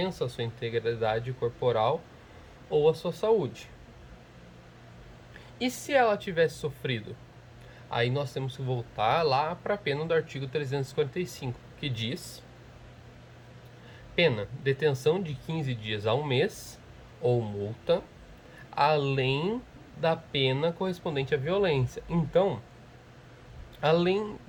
à sua integridade corporal ou à sua saúde. E se ela tivesse sofrido? Aí nós temos que voltar lá para a pena do artigo 345, que diz: pena, detenção de 15 dias a um mês ou multa, além da pena correspondente à violência. Então, além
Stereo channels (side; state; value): both; identical; correlation 1.00